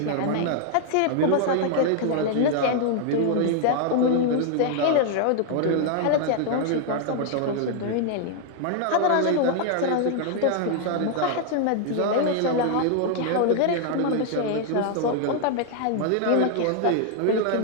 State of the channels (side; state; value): both; different; correlation 0.00